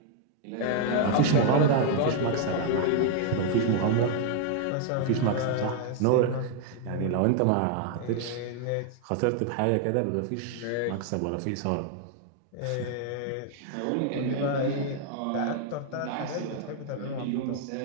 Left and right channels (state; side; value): different; both; correlation 0.00